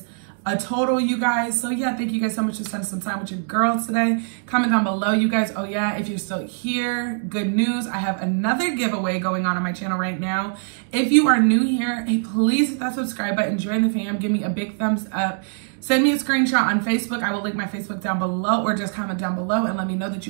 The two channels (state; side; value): silent; left; digital silence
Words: a total, you guys. So yeah, thank you guys so much for spending some time with your girls today. Comment down below, you guys. Oh yeah, if you're still here, good news. I have another giveaway going on my channel right now. If you are new here, hey, please hit that subscribe button, join the fam, give me a big thumbs up. Send me a screenshot on Facebook. I will link my Facebook down below, or just comment down below and let me know that